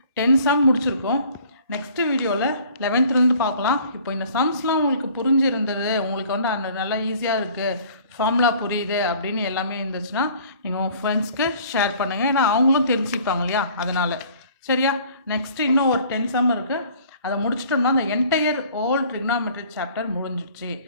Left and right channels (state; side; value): inverted; both; correlation -0.52